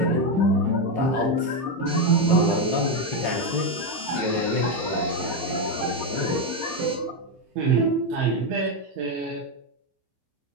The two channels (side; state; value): left; late; 15 ms